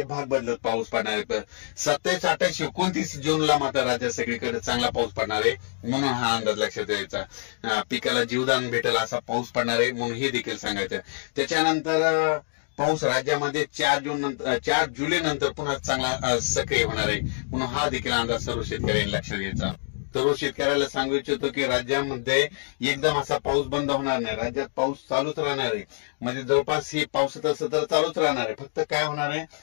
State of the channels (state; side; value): silent; right; digital silence